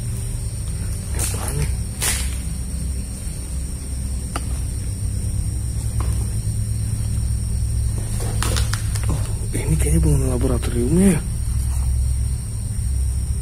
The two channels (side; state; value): both; identical; correlation 1.00